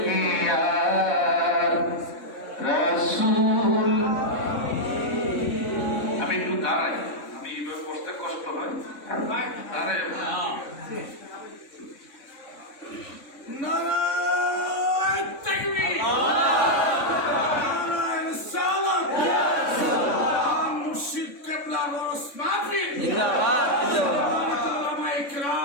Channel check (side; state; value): right; late; 3.6 ms